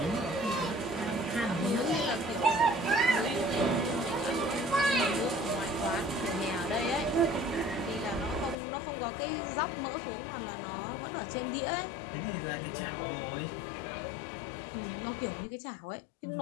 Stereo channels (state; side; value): drops out; right; at 8.6 s